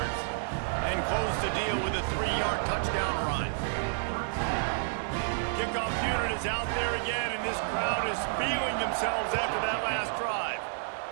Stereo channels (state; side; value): silent; left; digital silence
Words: and close the deal with a 3-yard touchdown run. Kickoff unit is out there again, and this crowd is feeling themselves after that last drive.